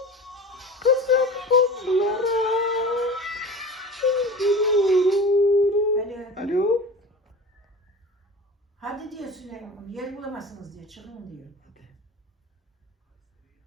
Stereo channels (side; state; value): both; normal; correlation 0.35